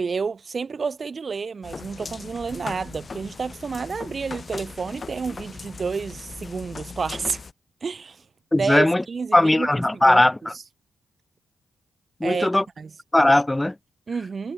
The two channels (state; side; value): normal; both; correlation 0.96